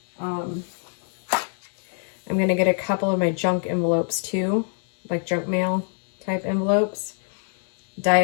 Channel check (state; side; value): silent; right; digital silence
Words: I'm going to get a couple of my junk envelopes too. like junk mail type envelopes. Dye